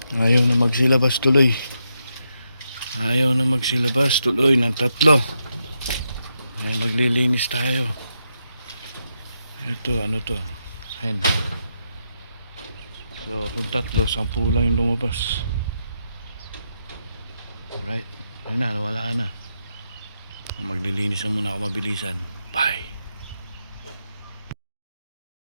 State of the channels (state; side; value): inverted; both; correlation -0.83